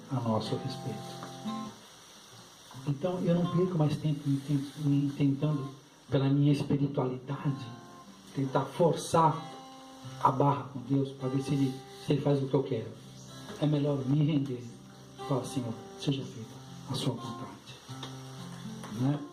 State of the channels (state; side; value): identical; both; correlation 1.00